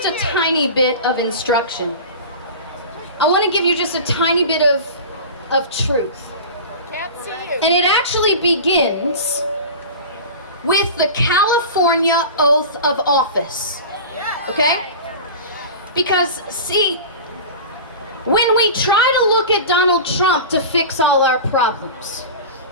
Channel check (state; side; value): inverted; both; correlation -0.32